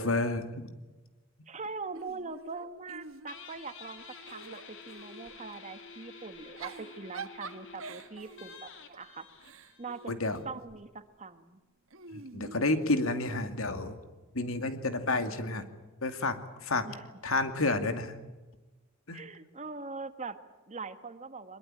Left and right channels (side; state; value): both; normal; correlation 0.01